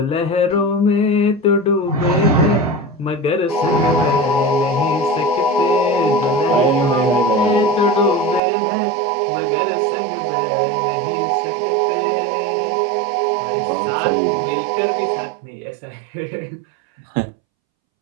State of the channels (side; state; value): left; drops out; at 8.4 s